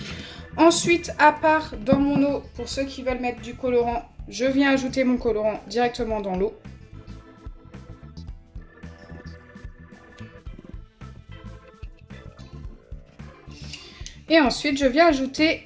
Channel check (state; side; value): identical; both; correlation 1.00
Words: Ensuite, à part dans mon eau, pour ceux qui veulent mettre du colorant, je viens ajouter mon colorant directement dans l'eau. Et ensuite, je viens